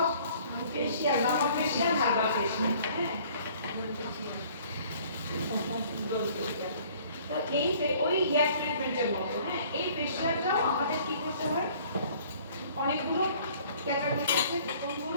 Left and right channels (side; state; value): both; inverted; correlation -0.55